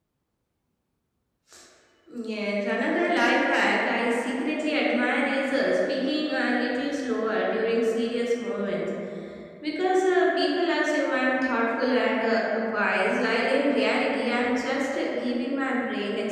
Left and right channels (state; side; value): identical; both; correlation 1.00